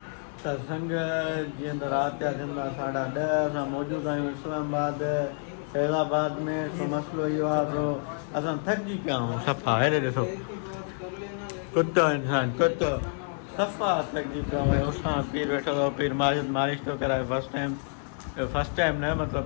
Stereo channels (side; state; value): right; silent; 59 dB below the other